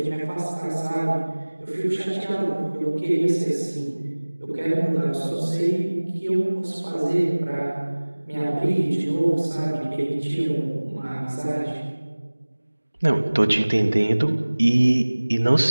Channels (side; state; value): both; inverted; correlation -1.00